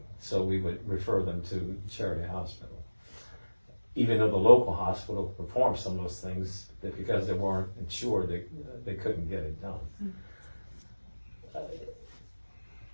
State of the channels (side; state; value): both; inverted; correlation -1.00